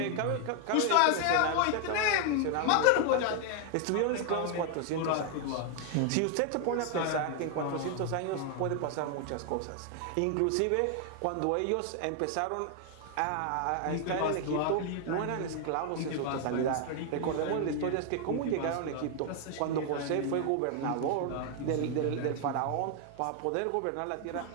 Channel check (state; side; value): different; both; correlation 0.00